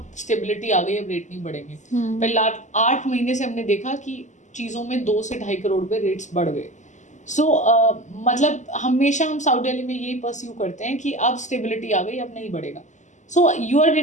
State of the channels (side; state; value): right; late; 0.35 ms